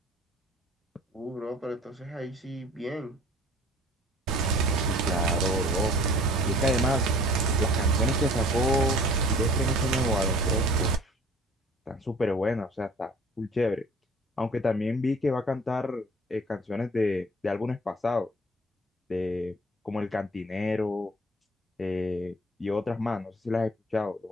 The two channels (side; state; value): both; normal; correlation 0.49